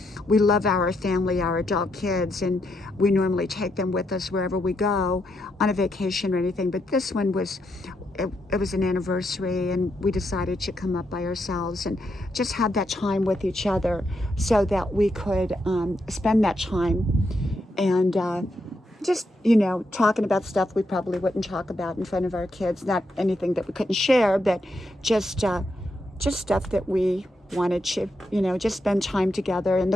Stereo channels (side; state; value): both; normal; correlation 0.81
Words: We love our family, our adult kids, and we normally take them with us wherever we go on a vacation or anything, but this one was it was an anniversary, and we decided to come up by ourselves and just have that time with each other so that we could spend that time and just, talking about stuff we probably wouldn't talk about in front of our kids. Not anything that we couldn't share, but just stuff that we wanted to, just spend time together in